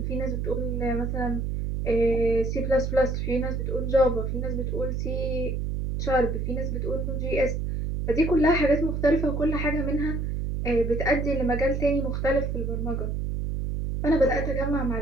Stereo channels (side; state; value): right; noise; hum, 1 dB below the sound